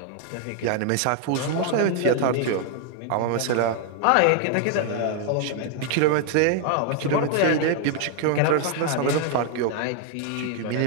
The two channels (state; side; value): different; both; correlation 0.00